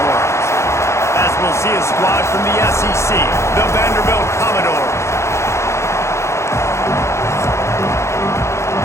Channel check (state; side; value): late; right; 0.13 ms